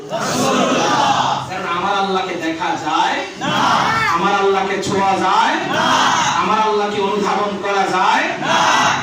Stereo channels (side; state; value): both; identical; correlation 1.00